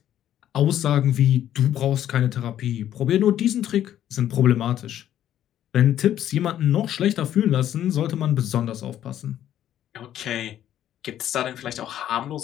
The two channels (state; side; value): quieter; right; 11.3 dB